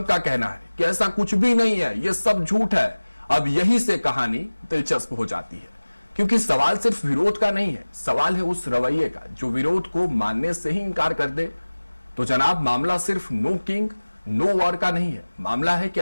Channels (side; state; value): both; inverted; correlation -1.00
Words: का कहना है कि ऐसा कुछ भी नहीं है, यह सब झूठ है। अब यही से कहानी दिलचस्प हो जाती है, क्योंकि सवाल सिर्फ विरोध का नहीं है, सवाल है उस रवैये का जो विरोध को मानने से ही इंकार कर दे। तो जनाब, मामला सिर्फ नो किंग नो वॉर का नहीं है। मामला है